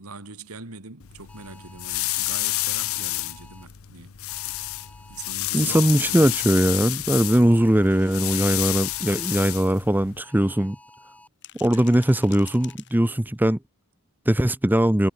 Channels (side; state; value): both; normal; correlation 0.85